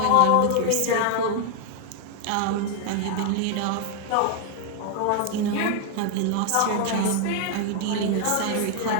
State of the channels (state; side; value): different; both; correlation 0.01